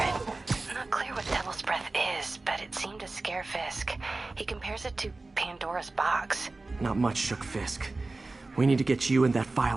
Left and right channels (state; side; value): quieter; left; 3.3 dB